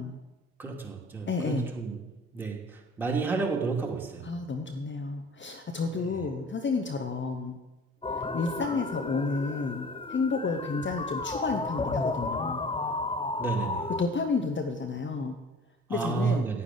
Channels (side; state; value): both; normal; correlation 0.46